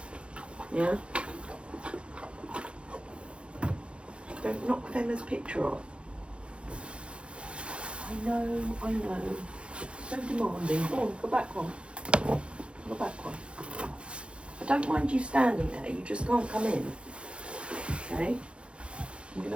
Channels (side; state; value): left; late; 0.058 ms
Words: Yeah? Don't knock Femma's picture off. I know. So demanding. Go on, go back one. Go back one. I don't mind you standing there, you just can't come in. Okay? I'm going